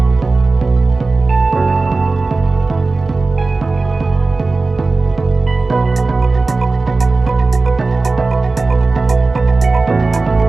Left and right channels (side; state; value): left; quieter; 3.6 dB